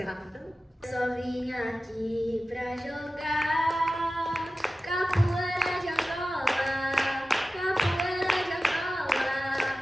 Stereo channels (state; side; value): normal; both; correlation 0.95